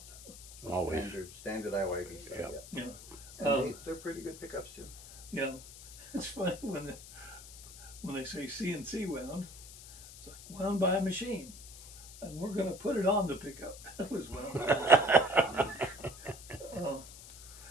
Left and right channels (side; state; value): left; noise; hiss, 16 dB below the sound